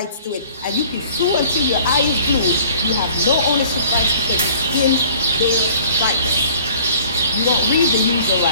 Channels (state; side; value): inverted; both; correlation -0.52